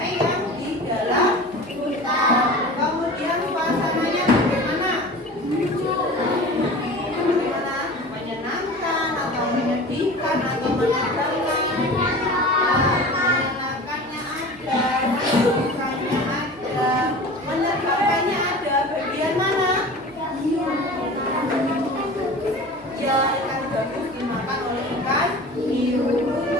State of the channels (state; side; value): noise; right; hum, 27 dB below the sound